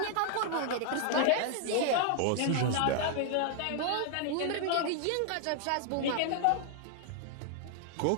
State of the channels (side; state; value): both; different; correlation 0.00